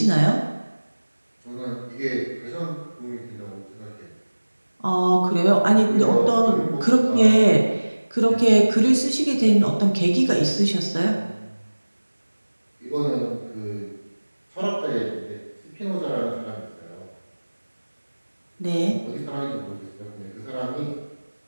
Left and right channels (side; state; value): both; inverted; correlation -1.00